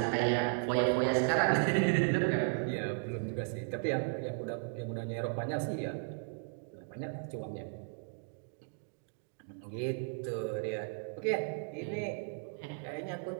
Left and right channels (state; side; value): quieter; left; 38.6 dB